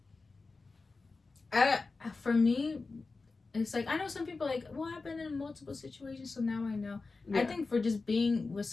For me, it's like I know some people like, well, I've been in multiple situations, so now I know. Yeah. I think for just being with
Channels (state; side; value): quieter; right; 3.9 dB